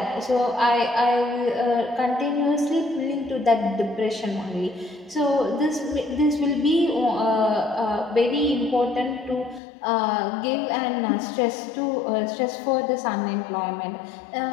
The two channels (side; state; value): right; drops out; at 9.6 s